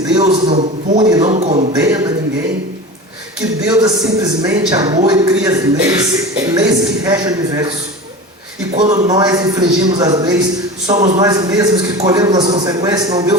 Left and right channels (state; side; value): normal; both; correlation 0.31